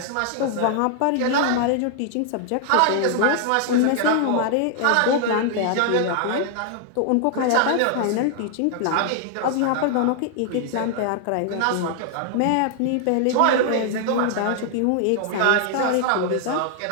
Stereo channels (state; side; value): different; both; correlation 0.00